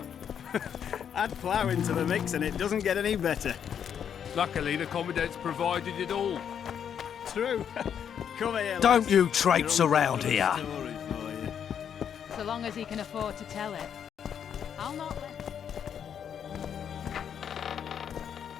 Add plough into the mix and it doesn't get any better. Luckily, the Commandant's provided it all. True. Come here, Don't lass. you traipse Your around uncle's here. got a story for you. So long as he can afford to tell it. I'll not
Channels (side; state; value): right; quieter; 8.4 dB